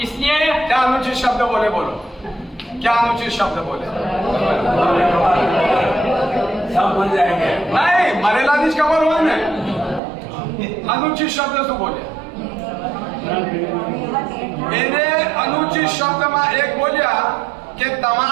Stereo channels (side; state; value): left; drops out; at 10.0 s